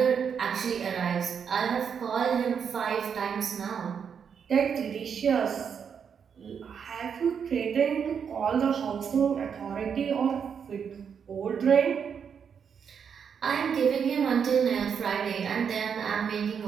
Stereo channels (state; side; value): quieter; left; 7.1 dB